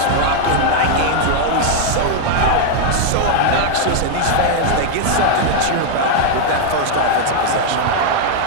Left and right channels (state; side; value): different; both; correlation 0.00